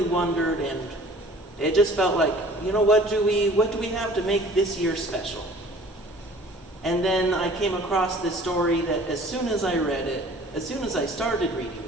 wondered, and it just felt like, you know, what do we have to make this year special? And then I came across this story that as soon as I read it, as soon as I started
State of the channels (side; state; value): both; normal; correlation 0.49